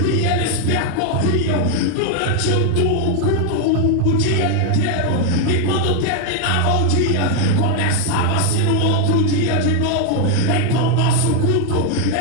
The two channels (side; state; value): both; different; correlation 0.01